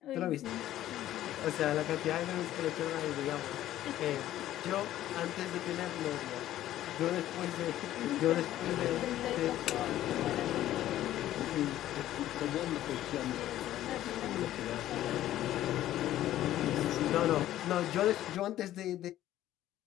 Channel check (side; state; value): right; quieter; 13.4 dB